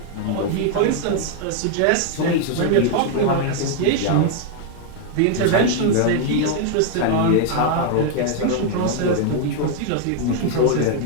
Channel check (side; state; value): both; different; correlation 0.00